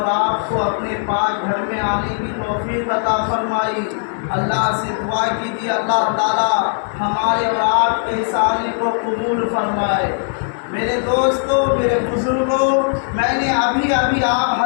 آپ کو اپنے پاک گھر میں آنے کی توفیق عطا فرمائی۔ اللہ سے دعا کیجیے اللہ تعالیٰ ہمارے اور آپ کے اس آنے کو قبول فرمائے۔ میرے دوستوں، میرے بزرگوں، میں نے ابھی آپ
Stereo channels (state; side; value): silent; right; 65 dB below the other